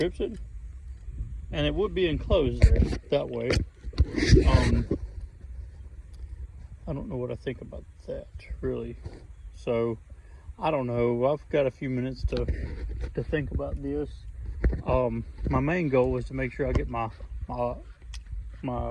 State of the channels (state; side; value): identical; both; correlation 1.00